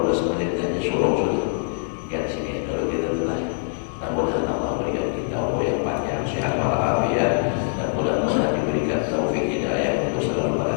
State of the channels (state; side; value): silent; right; 58 dB below the other